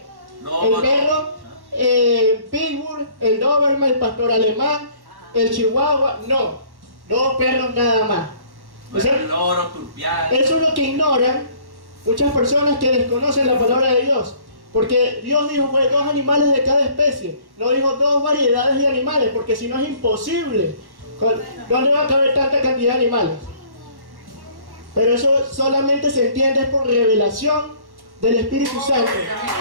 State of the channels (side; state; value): left; late; 1.1 ms